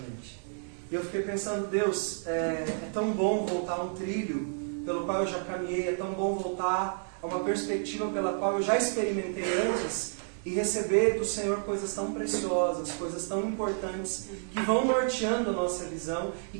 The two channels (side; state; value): left; silent; digital silence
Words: E eu fiquei pensando, Deus, é tão bom voltar a um trilho pelo qual eu já caminhei, é tão bom voltar a uma perspectiva pela qual eu já experimentei antes e receber do Senhor coisas tão preciosas, coisas tão importantes que vão norteando a nossa visão e